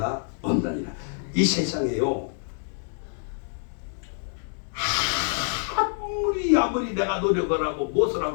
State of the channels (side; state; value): right; silent; 61 dB below the other